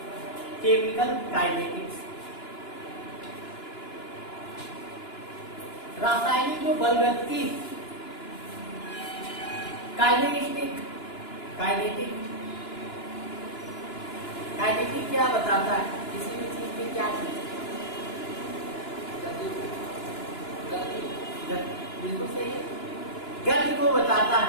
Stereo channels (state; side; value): late; right; 2.9 ms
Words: chemical kinetics. रासायनिक जो बलगति, काइनेटिक काइनेटिक काइनेटिक क्या बताता है? किसी भी चीज की क्या चीज? बिल्कुल सही है, गति को बताता